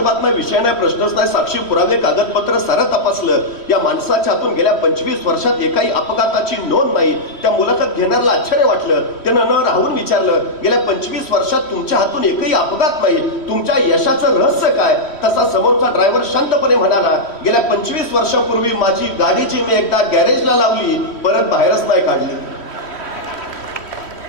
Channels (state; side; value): late; right; 3.1 ms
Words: नाही, विषय नाही, प्रश्नच नाही, साक्षी पुरावे कागदपत्र सारं तपासलं, या माणसाच्या हातून गेल्या 25 वर्षात एकाही अपघाताची नोंद नाही। त्या मुलाखत घेणाऱ्याला आश्चर्य वाटलं। त्यानं न राहून विचारलं, गेल्या 25 वर्षात तुमच्या हातून एकही अपघात नाही, तुमच्या यशाचं रहस्य काय? तसा समोरचा ड्रायव्हर शांतपणे म्हणाला, गेल्या 25 वर्षापूर्वी माझी गाडी जी मी एकदा गॅरेजला लावली, परत बाहेरच नाही काढली।